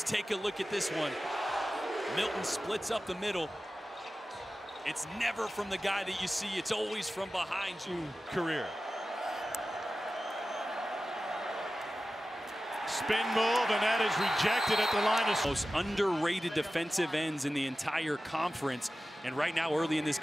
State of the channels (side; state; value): both; normal; correlation 0.95